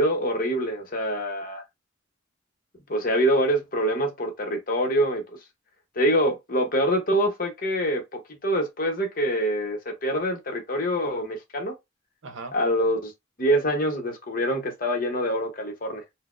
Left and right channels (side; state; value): both; normal; correlation 0.13